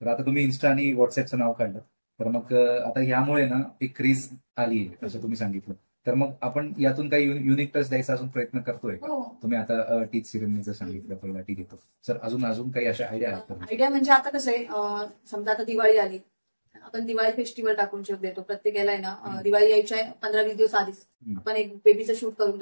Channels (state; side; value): inverted; both; correlation -1.00